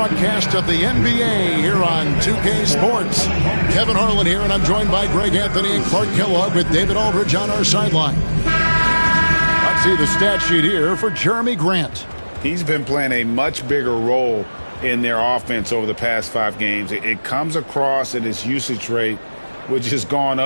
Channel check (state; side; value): inverted; both; correlation -1.00